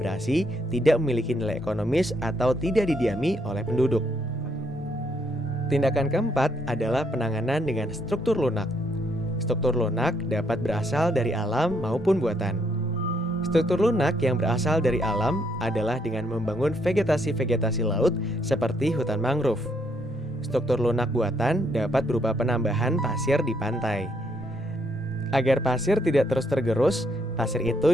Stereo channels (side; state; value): both; normal; correlation 0.73